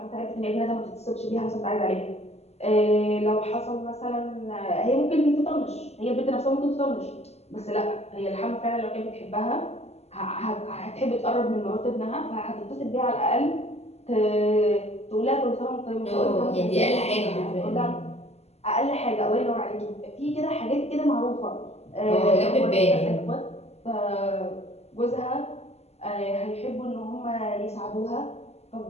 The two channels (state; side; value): late; right; 0.30 ms